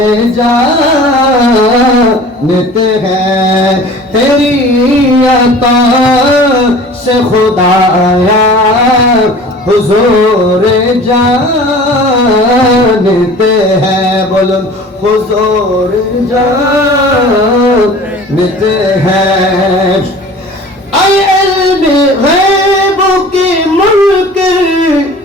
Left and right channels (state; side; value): normal; both; correlation 0.43